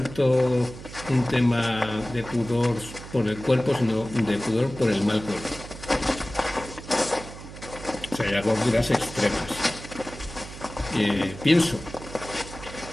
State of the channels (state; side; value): noise; right; hum, 14 dB below the sound